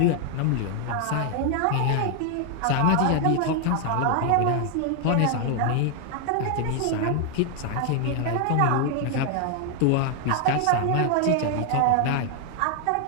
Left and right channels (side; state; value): both; different; correlation 0.00